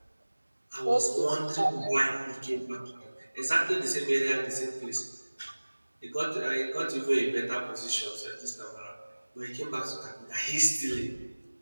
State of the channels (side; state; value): both; inverted; correlation -1.00